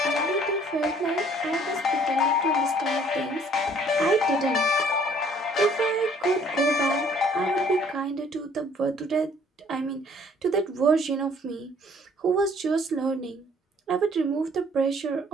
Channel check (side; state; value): both; normal; correlation 0.58